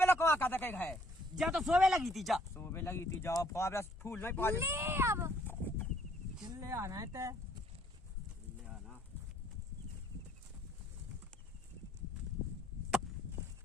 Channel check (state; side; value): normal; both; correlation 0.64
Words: कहा कहता कहीं है जा तो सोवे लगी थी जा सुबह लगी थी जाओ फावड़ा फूल नहीं पा ले अब चिल्ले आना है ते